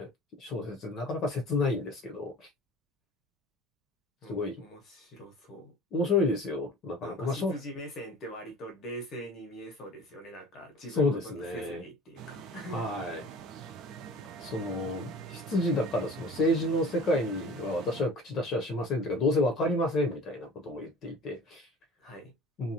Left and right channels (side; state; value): both; normal; correlation 0.43